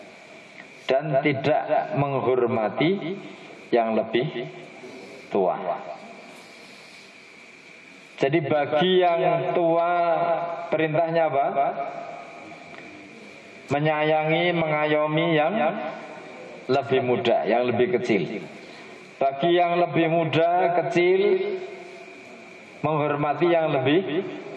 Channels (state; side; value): identical; both; correlation 1.00